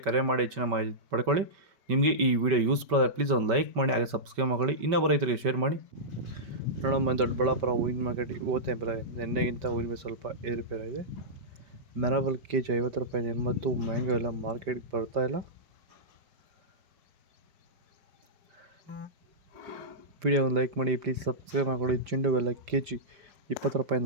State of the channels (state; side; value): late; left; 5.2 ms